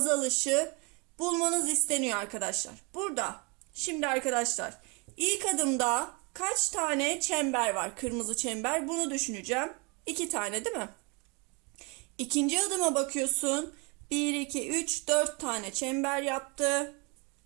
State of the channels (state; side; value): quieter; left; 30.8 dB